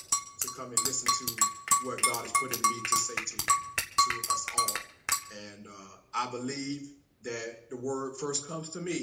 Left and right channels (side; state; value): both; identical; correlation 1.00